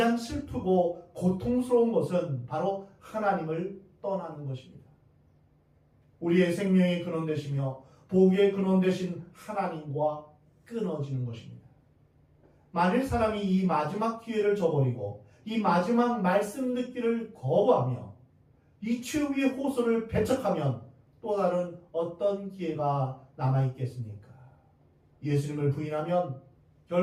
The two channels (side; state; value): both; identical; correlation 1.00